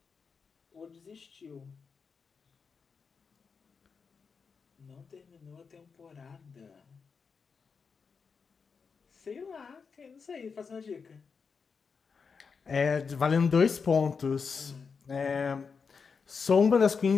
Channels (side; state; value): right; quieter; 5.5 dB